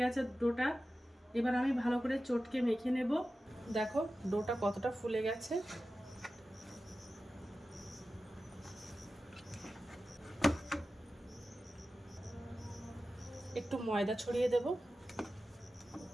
গেছে ডোটা। এবার আমি ভালো করে চটকে মেখে নেব। দেখো ডোটা কতটা ফুলে গেছে। একটু ময়দা ছড়িয়ে দেব।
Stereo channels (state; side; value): normal; both; correlation 0.94